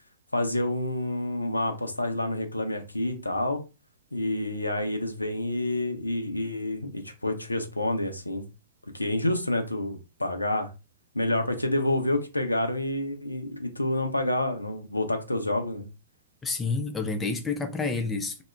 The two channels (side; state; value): both; inverted; correlation -0.69